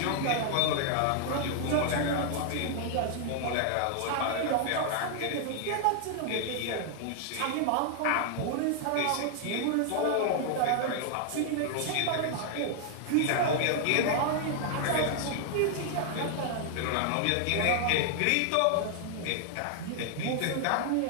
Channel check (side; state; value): both; different; correlation 0.00